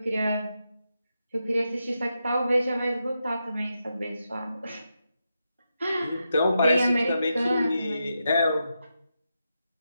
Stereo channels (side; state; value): both; inverted; correlation -0.86